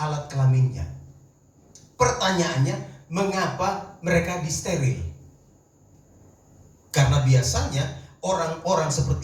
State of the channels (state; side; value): identical; both; correlation 1.00